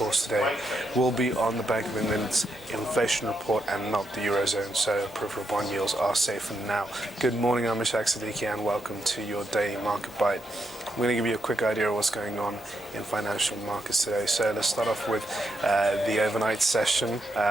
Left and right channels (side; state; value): both; normal; correlation 0.82